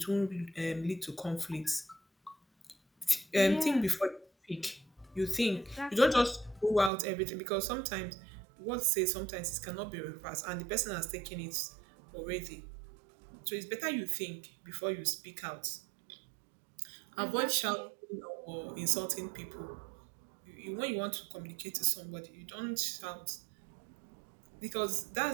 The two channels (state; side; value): drops out; left; at 6.9 s